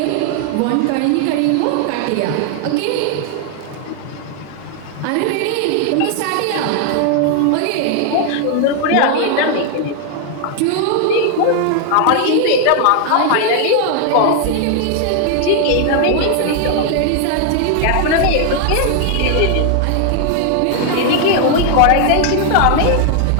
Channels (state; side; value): different; both; correlation 0.00